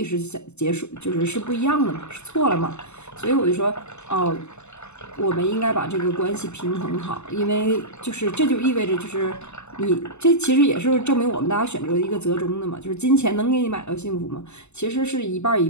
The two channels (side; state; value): right; late; 0.82 ms